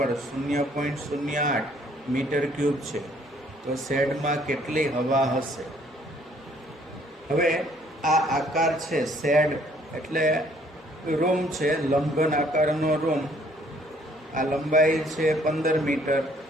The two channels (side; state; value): both; normal; correlation 0.62